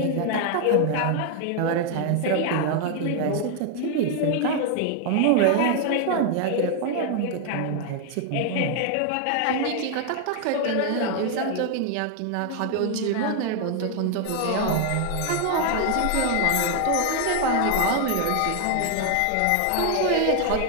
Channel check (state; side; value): different; both; correlation 0.00